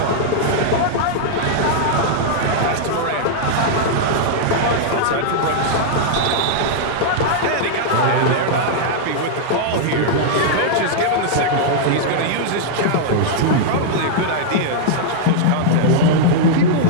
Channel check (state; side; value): different; both; correlation -0.01